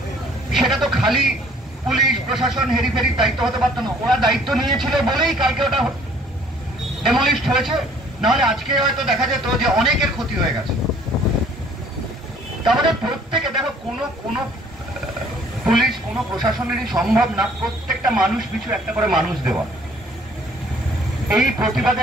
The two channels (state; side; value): normal; both; correlation 0.57